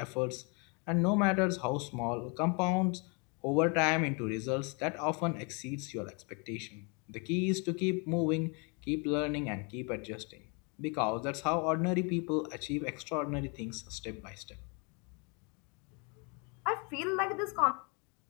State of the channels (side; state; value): right; quieter; 33.6 dB